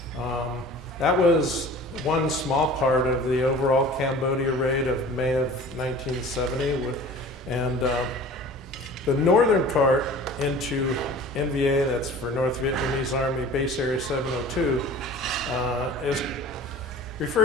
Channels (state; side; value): normal; both; correlation 0.43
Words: That was one small part of the overall Cambodia raid of May of 1970. And the northern part into NVA, that's for North Vietnamese Army Base Area 702, is